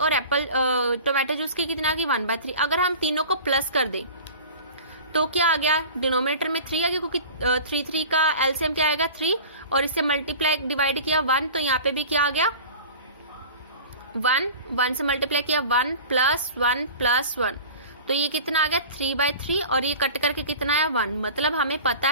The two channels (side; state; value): both; inverted; correlation -0.39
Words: टोमेटो जूस की कितना होगी 1/3। अगर हम तीनों को प्लस कर दें तो क्या आ गया, डिनोमिनेटर में 3 आ गया, क्योंकि 3 का एलसीएम क्या आएगा 3, और इससे मल्टीप्लाई डिवाइड किया 1, तो यहाँ पे भी क्या आ गया 1 से मल्टीप्लाई किया 1 + 1 + 1, तो ये कितना आ गया 3/3, और ये कट करके कितना है 1। मतलब हमें पता